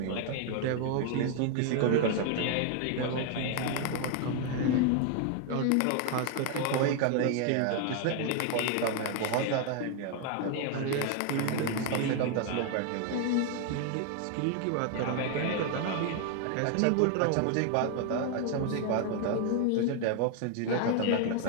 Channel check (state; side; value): different; both; correlation 0.00